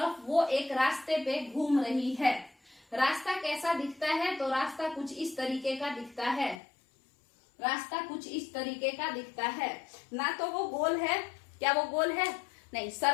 वो एक रास्ते पे घूम रही है। रास्ता कैसा दिखता है? तो रास्ता कुछ इस तरीके का दिखता है। रास्ता कुछ इस तरीके का दिखता है। ना तो वो गोल है, क्या वो गोल है? नहीं,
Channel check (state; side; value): drops out; right; at 6.6 s